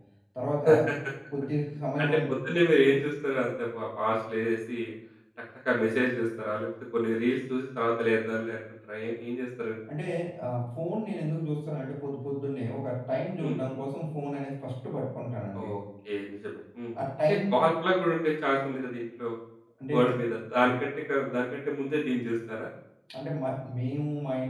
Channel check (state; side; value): identical; both; correlation 1.00